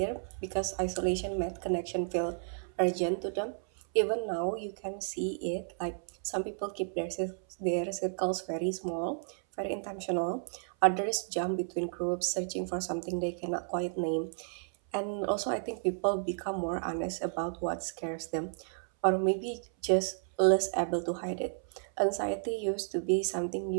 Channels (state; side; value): silent; left; 56 dB below the other